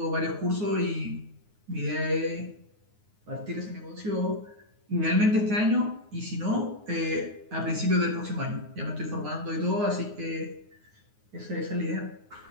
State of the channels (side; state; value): left; late; 9.6 ms